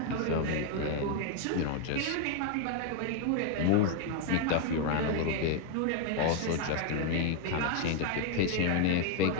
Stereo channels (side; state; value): both; different; correlation 0.00